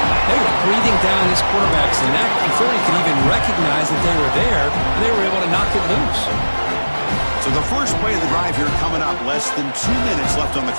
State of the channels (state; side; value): inverted; both; correlation -1.00